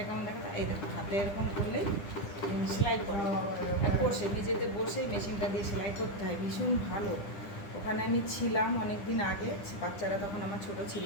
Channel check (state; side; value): late; right; 10 ms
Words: কেমন দেখা, এই দেখো হাতে এরকম করলেই সেলাই করা, বসে নিজেতে বসেই মেশিনটা দিয়ে সেলাই করতে হয়। ভীষণ ভালো। ওখানে আমি ছিলাম অনেক দিন আগে, বাচ্চারা তখন আমার ছোট ছিল।